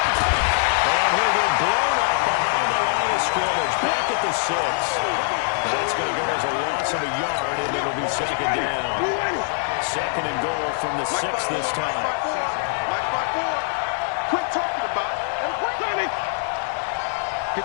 And he'll get blown up behind the line of scrimmage. Back at the 6. That's going to go as a loss of a yard, and it'll be 2nd down. 2nd and goal from the 6 this time. Quit talking about it. And we're 54.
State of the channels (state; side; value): silent; right; digital silence